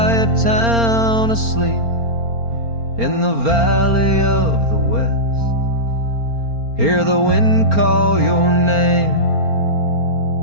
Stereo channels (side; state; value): left; late; 4.4 ms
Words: town asleep, in the valley of the west. Hear the wind call your name